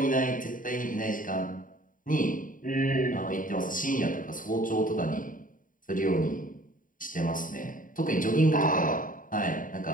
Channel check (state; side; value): late; right; 0.39 ms